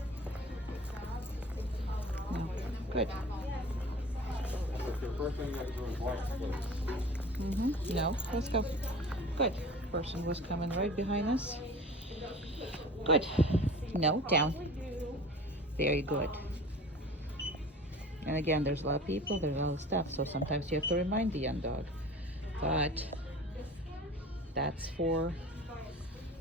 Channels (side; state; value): both; normal; correlation 0.40